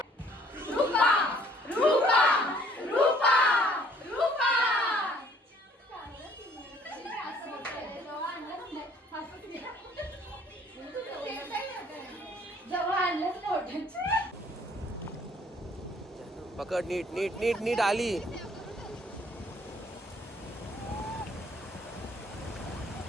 पकड नीट नीट नीट नीट आली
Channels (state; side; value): normal; both; correlation 0.60